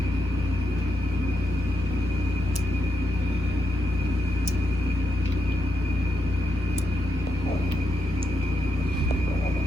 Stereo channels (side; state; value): both; normal; correlation 0.83